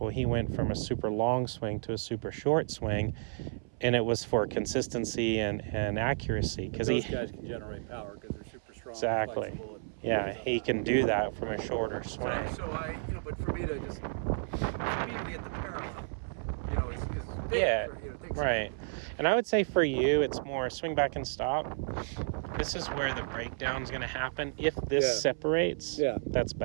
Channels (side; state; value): left; silent; 56 dB below the other